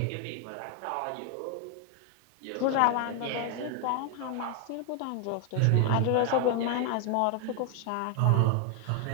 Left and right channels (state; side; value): different; both; correlation 0.00